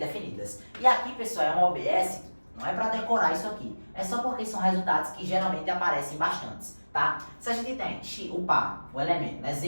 E aqui, pessoal, é um OBS, não é para decorar isso aqui, é só porque são resultados que geralmente aparecem bastantes, tá? Se a gente tem o par, o elemento, né,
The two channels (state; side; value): inverted; both; correlation -1.00